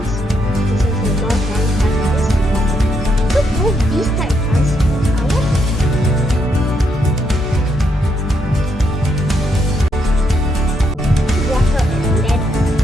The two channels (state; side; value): normal; both; correlation 0.77